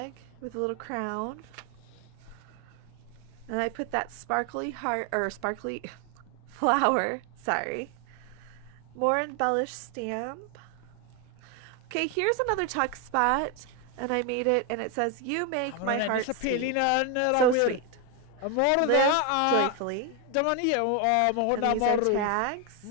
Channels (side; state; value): both; different; correlation 0.01